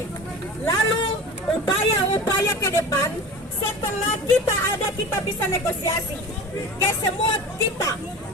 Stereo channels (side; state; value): both; normal; correlation 0.35